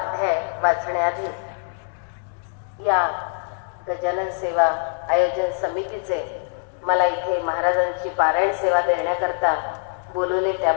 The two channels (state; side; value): silent; right; digital silence